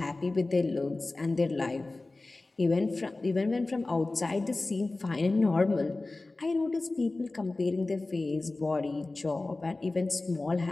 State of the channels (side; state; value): right; quieter; 3.1 dB